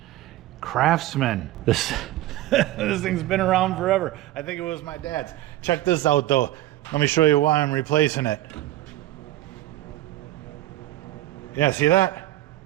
Craftsman. This thing's been around forever. I think it was my dad's. Check this out though. Let me show you why I'm replacing it. Yeah, see that?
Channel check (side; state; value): left; quieter; 15.3 dB